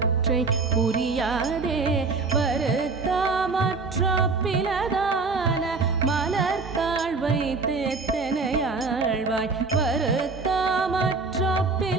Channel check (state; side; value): quieter; left; 4.2 dB